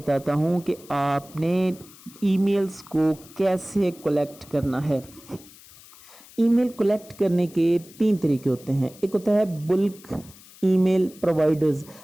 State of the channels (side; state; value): left; noise; hiss, 22 dB below the sound